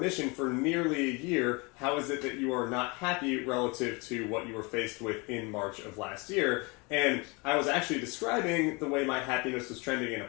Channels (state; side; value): quieter; right; 28.1 dB